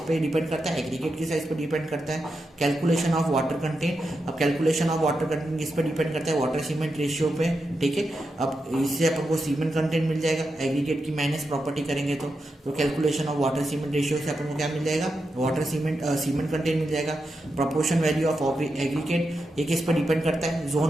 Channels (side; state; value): both; normal; correlation 0.87